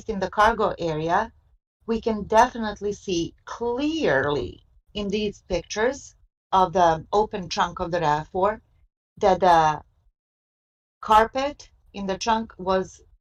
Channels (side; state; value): both; identical; correlation 1.00